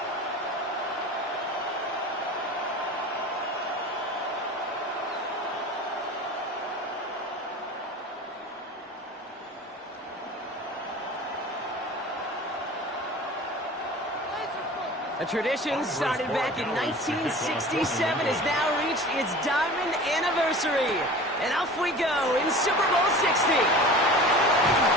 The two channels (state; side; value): normal; both; correlation 0.39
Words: A tradition started back in 1967 has now reached its diamond anniversary. And off we go in Super Bowl 60.